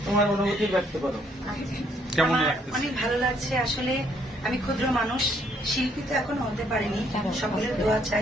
তোমার অনুভূতি ব্যক্ত করো। কেমন অনেক ভালো লাগছে। আসলে আমি ক্ষুদ্র মানুষ, শিল্পী তো এখনো হতে পারিনি। সকলের দোয়া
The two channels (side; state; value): both; normal; correlation 0.68